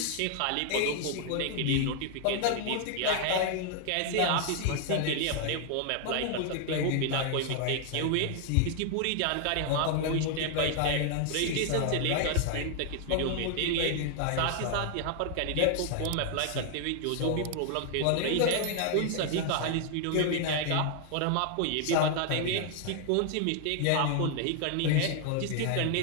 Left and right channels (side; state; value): both; different; correlation 0.00